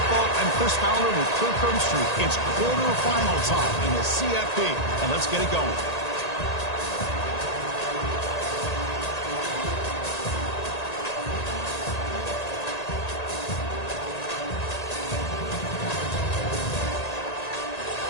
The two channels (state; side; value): late; right; 1.8 ms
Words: I'm Chris Fowler with Kirk Herbstreit. It's quarterfinal time in the CFP, and let's get it going.